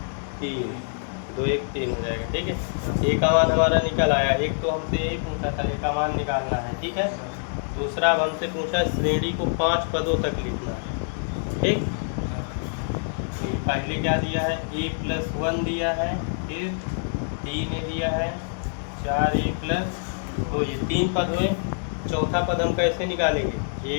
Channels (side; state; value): right; silent; digital silence